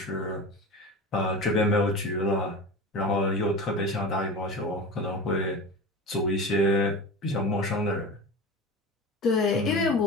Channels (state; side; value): normal; both; correlation 0.30